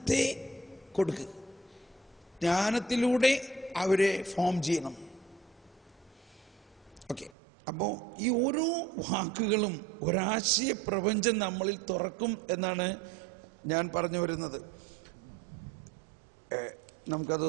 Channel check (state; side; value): drops out; left; at 7.3 s